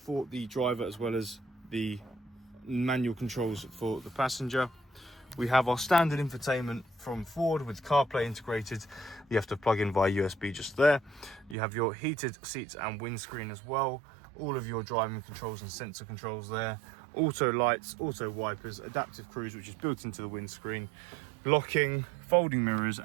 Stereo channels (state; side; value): drops out; left; at 11.6 s